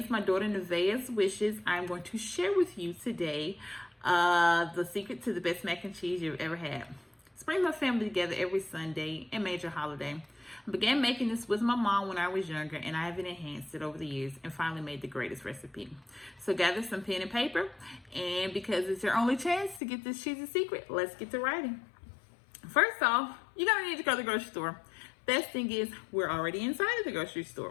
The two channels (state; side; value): drops out; right; at 19.8 s